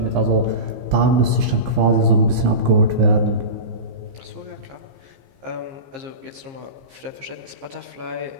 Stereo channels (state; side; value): late; left; 15 ms